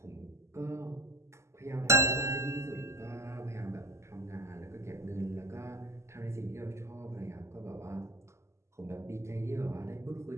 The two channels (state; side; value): late; left; 0.13 ms